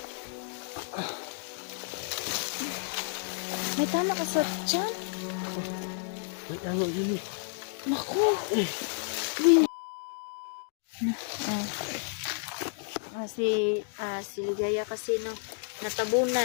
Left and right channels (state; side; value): silent; right; digital silence